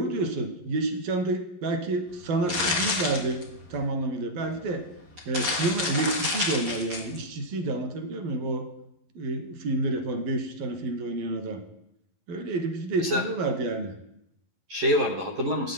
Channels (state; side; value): late; left; 11 ms